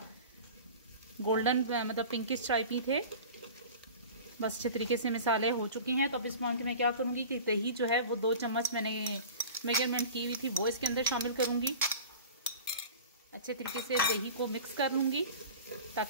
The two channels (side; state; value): both; inverted; correlation -0.38